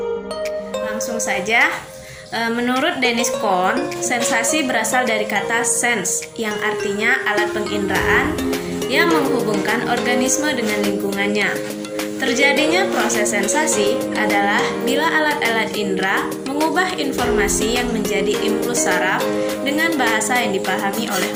Langsung saja. Menurut Dennis Kohn, sensasi berasal dari kata sense yang artinya alat penginderaan yang menghubungkan organisme dengan lingkungannya. Terjadinya proses sensasi adalah bila alat-alat indera mengubah informasi yang menjadi impuls saraf dengan bahasa yang dipahami oleh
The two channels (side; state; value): both; identical; correlation 1.00